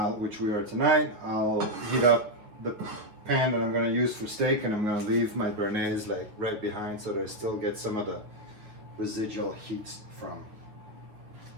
which we are tonight, I'll heat up the pan that I'm going to use for steak and I'm going to leave my béarnaise like right behind so that it still gets some of the residual heat from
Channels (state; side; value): late; left; 9.3 ms